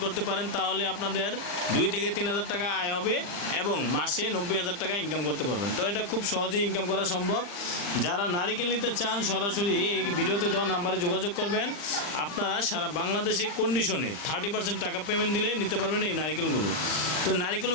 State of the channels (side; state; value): right; late; 40 ms